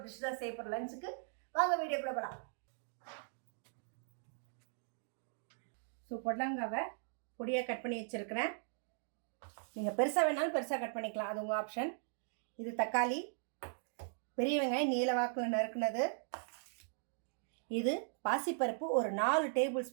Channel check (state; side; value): silent; left; digital silence